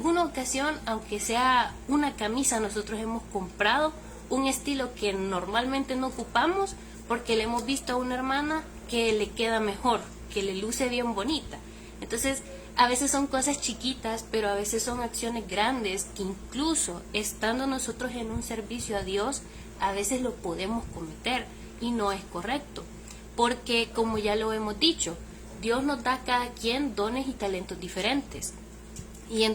ocasión, aunque sea una camisa, nosotros hemos comprado un estilo que normalmente no ocupamos porque le hemos visto a una hermana que le queda mejor, que le luce bien bonita. Entonces, a veces son cosas chiquitas, pero a veces son acciones grandes que incluso estando nosotros en un servicio a Dios, a veces lo podemos cometer y no es correcto. Porque, como ya lo hemos dicho, Dios nos da a cada quien dones y talentos diferentes. Y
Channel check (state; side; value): identical; both; correlation 1.00